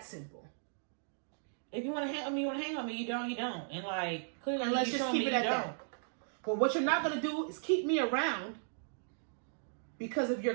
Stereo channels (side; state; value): left; silent; digital silence